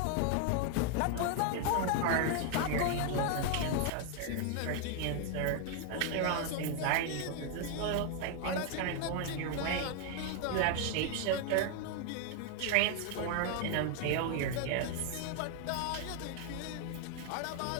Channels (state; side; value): different; both; correlation 0.00